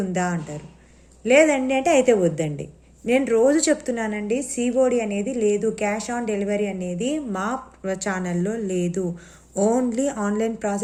ఉందా అంటారు. లేదండి అంటే అయితే వద్దండి. నేను రోజు చెప్తున్నానండి, సిఓడి అనేది లేదు, క్యాష్ ఆన్ డెలివరీ అనేది మా ఛానల్లో లేదు. ఓన్లీ ఆన్లైన్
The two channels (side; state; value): both; identical; correlation 1.00